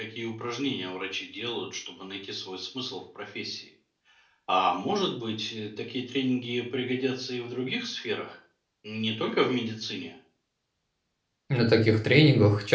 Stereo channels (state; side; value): identical; both; correlation 1.00